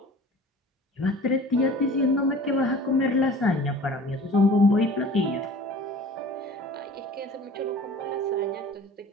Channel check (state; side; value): normal; both; correlation 0.44